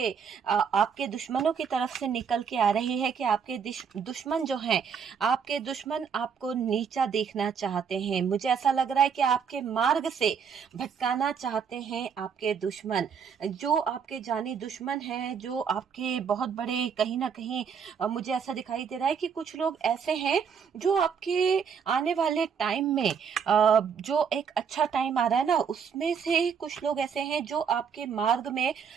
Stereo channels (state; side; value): quieter; left; 6.8 dB